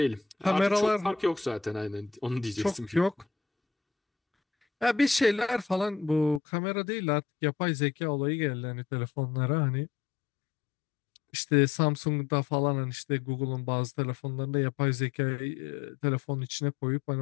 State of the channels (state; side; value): drops out; right; at 6.4 s